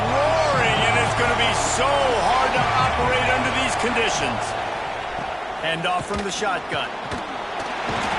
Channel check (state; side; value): identical; both; correlation 1.00